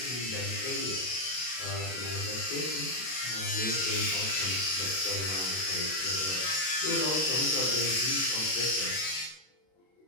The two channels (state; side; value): late; right; 32 ms